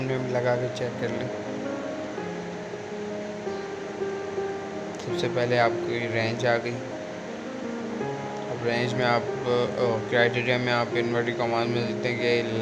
में लगा के चेक कर लें। सबसे पहले आपकी रेंज आ गई। अब रेंज में आप क्राइटेरिया में आप इन्वर्टेड कॉमास में लिखते हैं कि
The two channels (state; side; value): identical; both; correlation 1.00